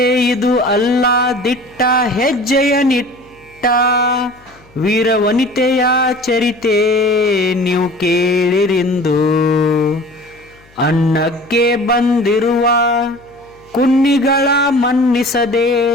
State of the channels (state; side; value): noise; left; hum, 29 dB below the sound